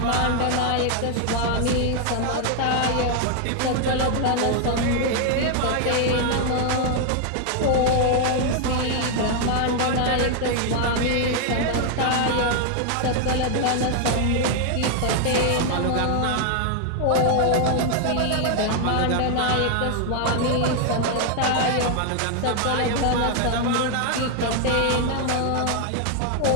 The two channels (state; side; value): different; both; correlation 0.00